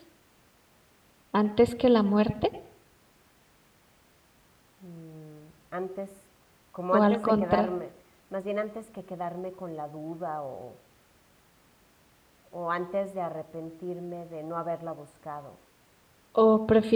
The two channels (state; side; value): identical; both; correlation 1.00